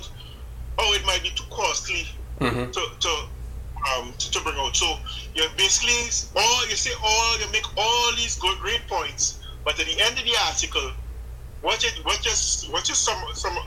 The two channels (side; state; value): both; identical; correlation 1.00